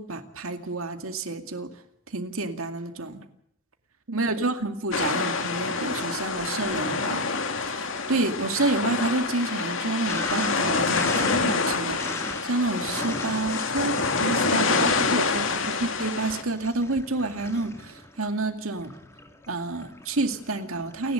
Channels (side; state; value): both; normal; correlation 0.07